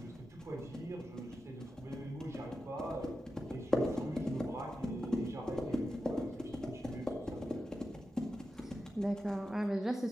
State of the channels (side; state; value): both; normal; correlation 0.91